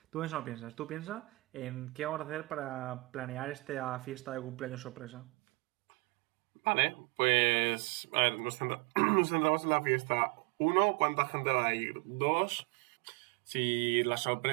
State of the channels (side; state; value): left; drops out; at 5.2 s